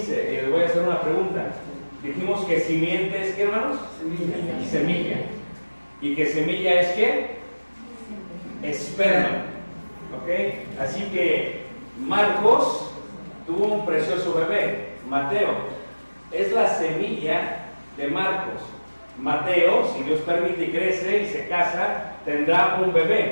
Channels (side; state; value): both; inverted; correlation -1.00